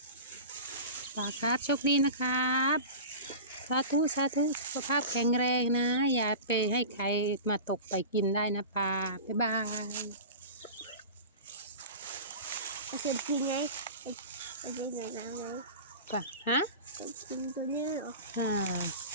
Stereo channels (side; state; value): both; inverted; correlation -0.33